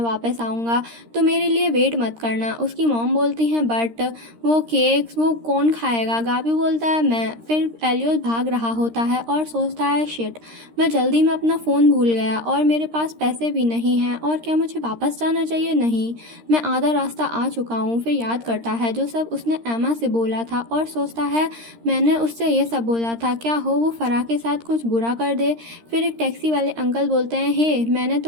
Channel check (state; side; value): late; left; 13 ms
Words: वापस आऊँगा, तो मेरे लिए वेट मत करना। उसकी मॉम बोलती हैं, बट वो केक्स वो कौन खाएगा? गाबी बोलता है, मैं। फिर एलियोस भाग रहा होता है और सोचता है, शिट, मैं जल्दी में अपना फ़ोन भूल गया और मेरे पास पैसे भी नहीं हैं, और क्या मुझे वापस जाना चाहिए? नहीं, मैं आधा रास्ता आ चुका हूँ। फिर याद करता है जो सब उसने एमा से बोला था और सोचता है, मैंने उससे ये सब बोला था, क्या हो वो फरा के साथ कुछ बुरा कर दे। फिर एक टैक्सी वाले अंकल बोलते हैं, हे मैंने